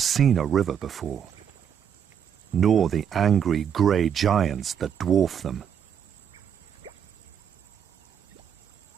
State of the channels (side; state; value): left; quieter; 8.3 dB